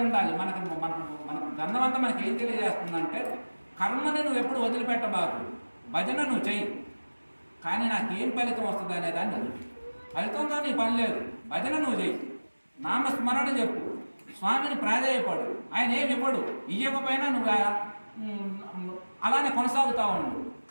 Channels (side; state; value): both; inverted; correlation -1.00